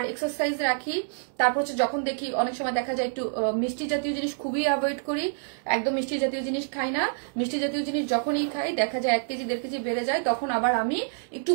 এক্সারসাইজ রাখি। তারপর হচ্ছে যখন দেখি অনেক সময় দেখা যায় একটু মিষ্টি জাতীয় জিনিস খুবই অ্যাভয়েড করি, একদম মিষ্টি জাতীয় জিনিস খাই না। মিষ্টি জাতীয় জিনিস যখনই খাই দেখা যায় 1 কেজি 1.5 কেজি বেড়ে যায়, তখন আবার আমি একটু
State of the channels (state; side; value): silent; left; digital silence